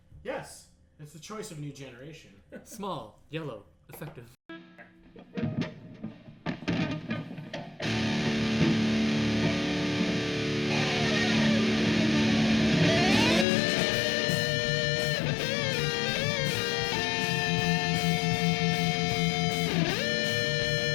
yes, it's the choice of new generation. Small, yellow, effective.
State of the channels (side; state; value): right; drops out; at 13.5 s